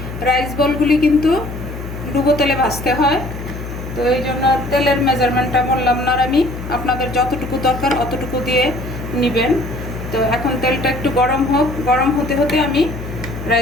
রাইস বলগুলি কিন্তু ডুবো তেলে ভাজতে হয়, তো এই জন্য তেলের মেজারমেন্টটা বললাম না আমি, আপনাদের যতটুকু দরকার অতটুকু দিয়ে নেবেন। তো এখন তেলটা একটু গরম হোক, গরম হতে হতে আমি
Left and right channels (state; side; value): noise; left; hum, 9 dB below the sound